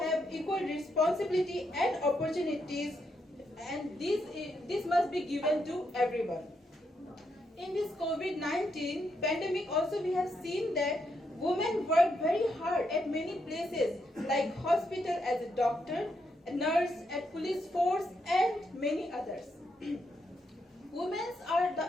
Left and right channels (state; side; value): normal; both; correlation 0.80